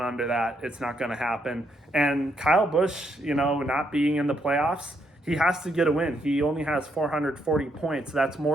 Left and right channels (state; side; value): normal; both; correlation 0.76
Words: that, it's not going to happen. And Kyle Busch, you know, not being in the playoffs, he has to get a win. He only has 440 points. That's